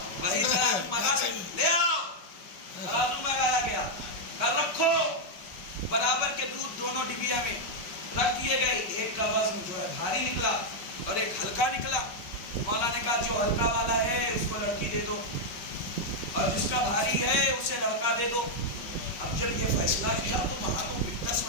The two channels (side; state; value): right; late; 5.2 ms